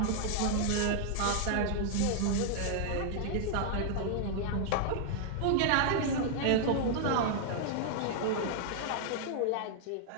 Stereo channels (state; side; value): different; both; correlation -0.01